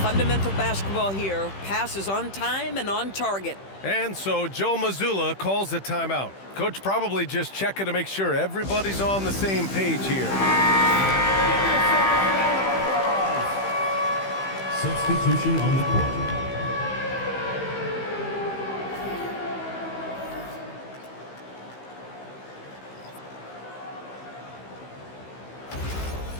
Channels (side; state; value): right; late; 15 ms